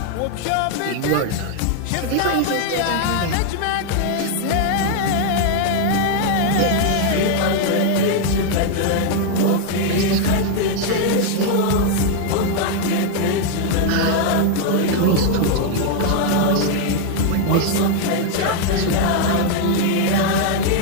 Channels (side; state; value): both; different; correlation 0.00